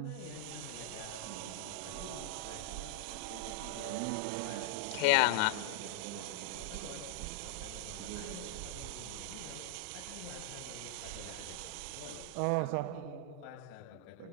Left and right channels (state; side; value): different; both; correlation -0.01